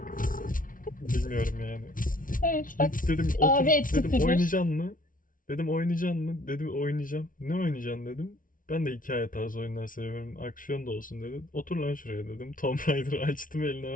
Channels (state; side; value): late; right; 0.39 ms